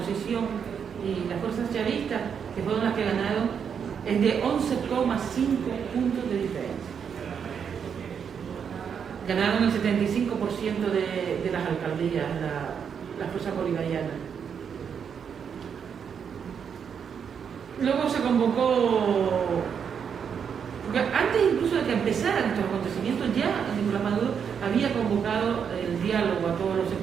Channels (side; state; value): left; quieter; 7.2 dB